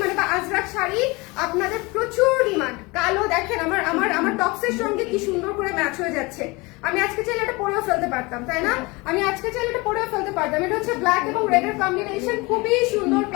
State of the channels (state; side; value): quieter; right; 24.9 dB